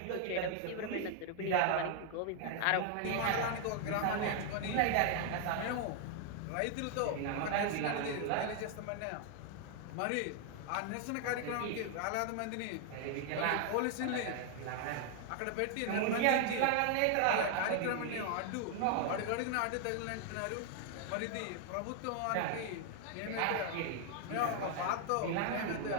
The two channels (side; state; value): both; different; correlation 0.00